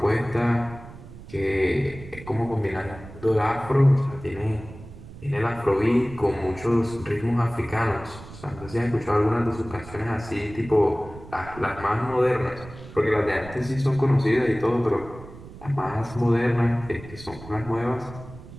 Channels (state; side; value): noise; right; rumble, 16 dB below the sound